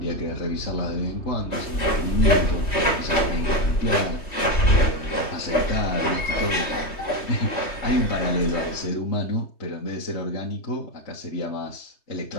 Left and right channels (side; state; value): right; late; 3.3 ms